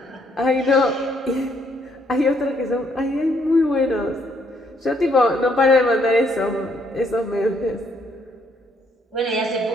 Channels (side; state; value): both; normal; correlation 0.70